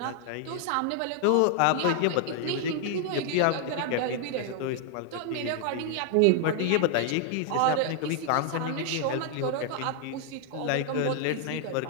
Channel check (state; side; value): different; both; correlation 0.00